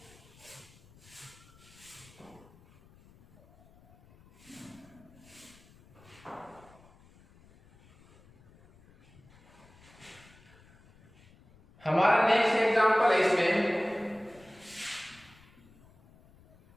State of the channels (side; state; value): left; noise; rumble, 26 dB below the sound